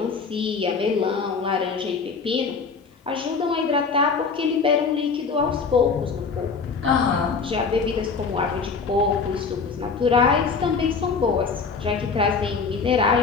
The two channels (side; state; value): right; quieter; 5.1 dB